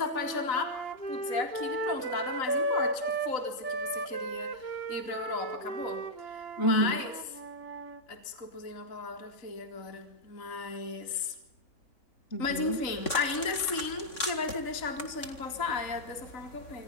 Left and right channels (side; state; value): right; late; 3.6 ms